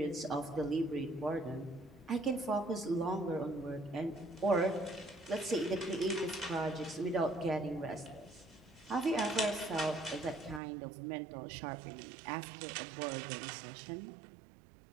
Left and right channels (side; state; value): left; drops out; at 10.6 s